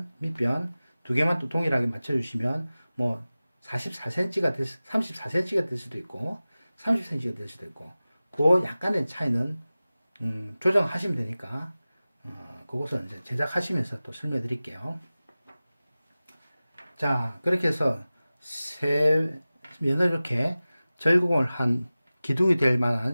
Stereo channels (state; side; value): inverted; both; correlation -0.97